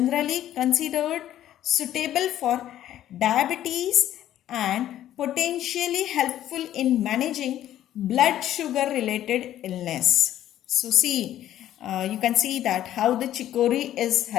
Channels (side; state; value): right; quieter; 12.2 dB